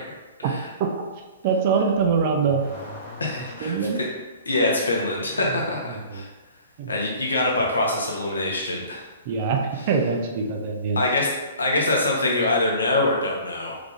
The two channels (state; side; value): inverted; both; correlation -0.45